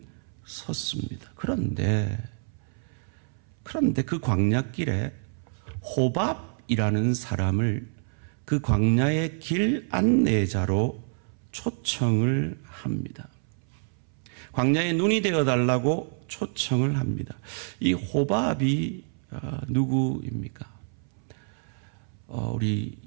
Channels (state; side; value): silent; left; 60 dB below the other